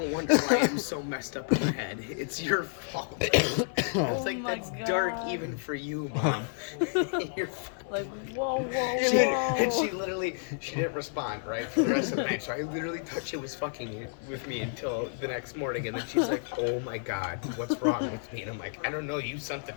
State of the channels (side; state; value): right; silent; 58 dB below the other